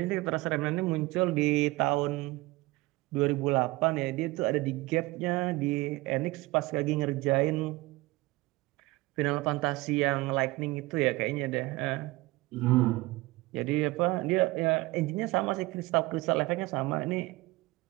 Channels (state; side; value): quieter; left; 21.1 dB